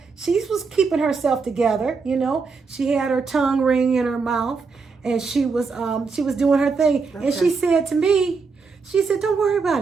keeping herself together, She had her tongue ring in her mouth, and she was doing her thing. Okay. And she said to me, don't worry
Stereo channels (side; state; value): left; quieter; 4.8 dB